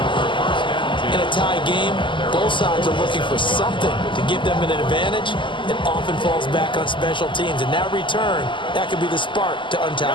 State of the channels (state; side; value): late; right; 0.24 ms